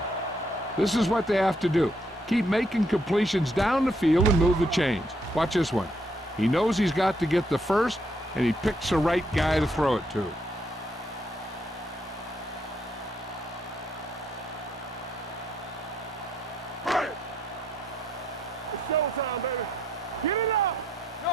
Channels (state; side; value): normal; both; correlation 0.73